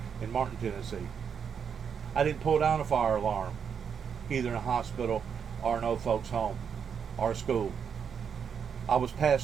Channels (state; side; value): quieter; left; 7.1 dB